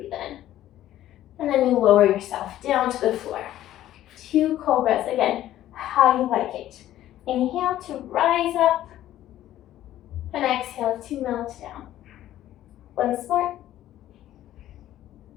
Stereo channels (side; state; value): right; quieter; 13.2 dB